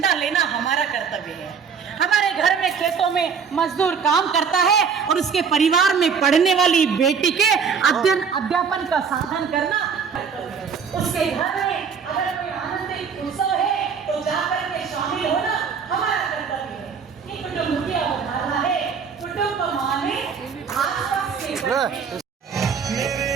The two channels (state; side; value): quieter; left; 6.3 dB